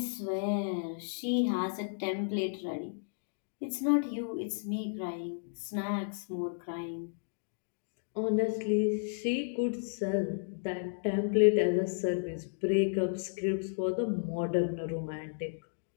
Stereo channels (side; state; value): right; silent; digital silence